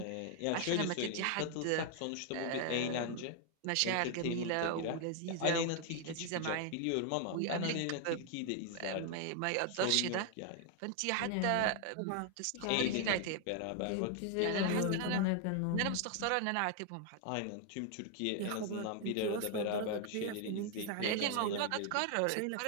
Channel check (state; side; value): different; both; correlation 0.00